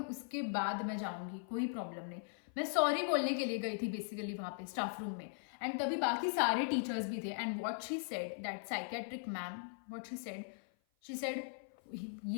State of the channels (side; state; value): right; silent; 51 dB below the other